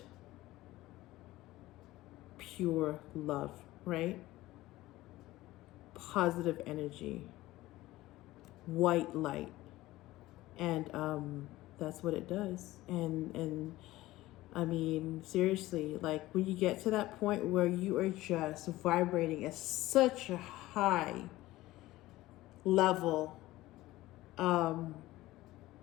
pure love, right? Positive energy, white light. And that's what it does. And I mean, seriously, like when you get to that point where you are just vibrating at such a high level,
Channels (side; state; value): right; quieter; 17.3 dB